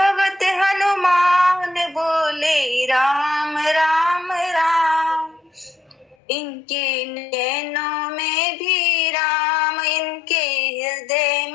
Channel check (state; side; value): drops out; right; at 6.2 s